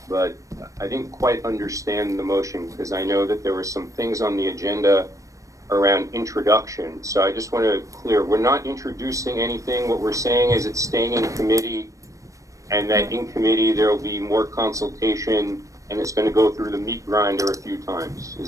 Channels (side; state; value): left; late; 0.16 ms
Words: I didn't quite understand the motion, because I know that there were some things on the agenda around introduction. So I just want to clear, we're not introducing anything. What we're saying is it's staying in committee, and that in committee there will be more consultation, and it's going to go through the meat grinder a few times.